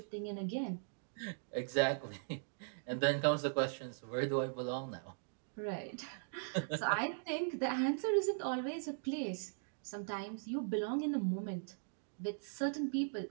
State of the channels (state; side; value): silent; left; digital silence